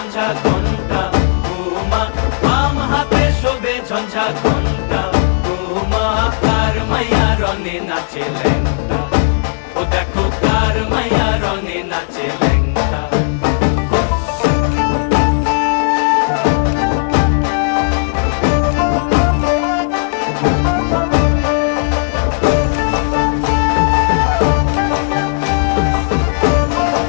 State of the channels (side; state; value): right; silent; digital silence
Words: ঘণ্টা উমা, বাম হাতে শোভে ঝঞ্ঝা ঘণ্টা উমা। কার মাইয়া রঙে নাচে ল্যাংটা, ও দেখো কার মাইয়া রঙে নাচে ল্যাংটা।